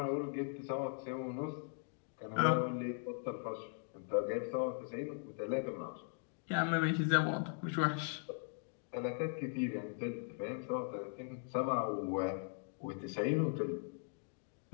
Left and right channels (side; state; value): right; silent; 51 dB below the other